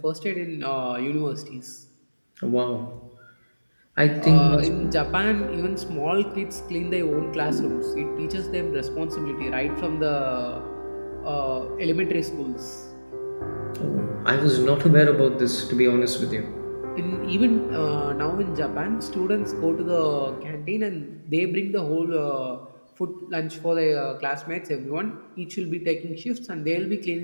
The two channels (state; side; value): inverted; both; correlation -1.00